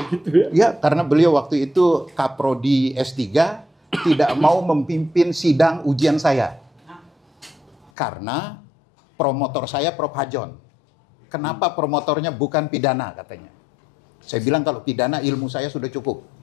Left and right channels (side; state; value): right; drops out; at 7.9 s